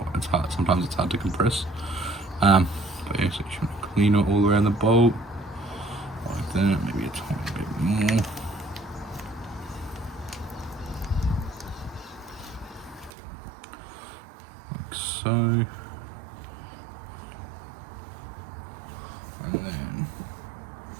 it's hard. Sometimes it's hard to compress. But yeah, so you should clean it all around the bolt like that. Maybe a tiny bit more.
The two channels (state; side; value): drops out; left; at 13.1 s